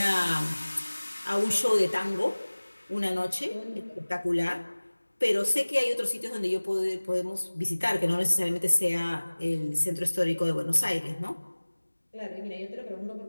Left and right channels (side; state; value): both; inverted; correlation -1.00